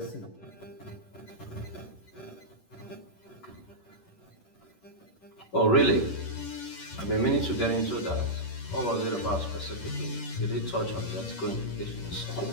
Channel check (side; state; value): right; late; 10 ms